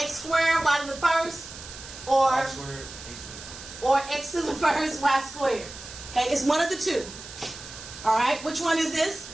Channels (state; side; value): noise; right; hiss, 14 dB below the sound